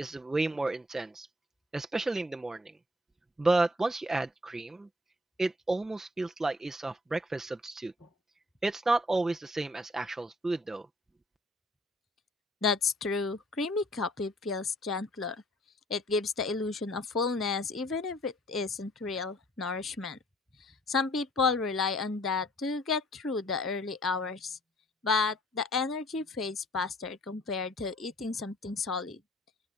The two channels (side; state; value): both; normal; correlation 0.59